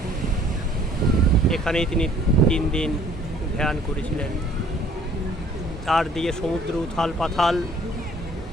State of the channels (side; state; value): both; normal; correlation 0.57